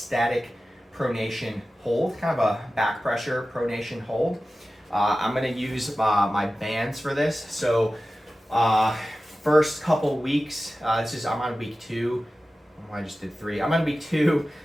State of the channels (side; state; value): both; normal; correlation 0.95